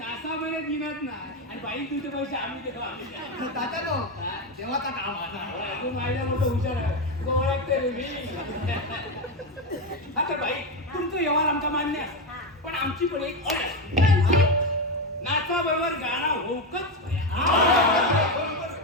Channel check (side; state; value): both; normal; correlation 0.12